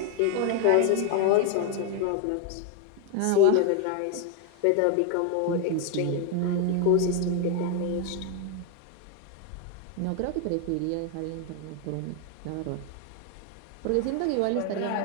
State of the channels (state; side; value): different; both; correlation 0.01